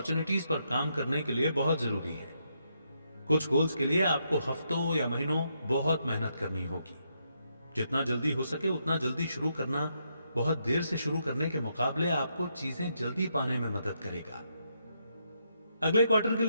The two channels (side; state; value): both; inverted; correlation -0.79